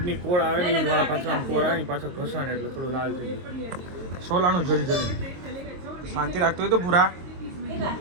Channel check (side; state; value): left; late; 22 ms